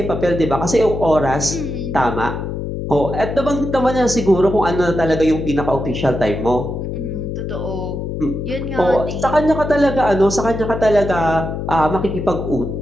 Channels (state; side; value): noise; left; hum, 5 dB below the sound